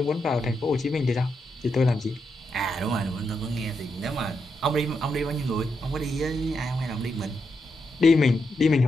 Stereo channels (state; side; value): normal; both; correlation 0.83